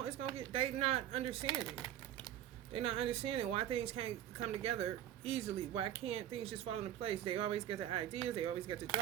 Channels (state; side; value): quieter; left; 11.4 dB